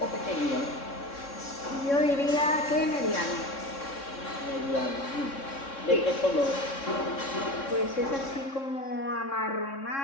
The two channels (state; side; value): late; right; 3.6 ms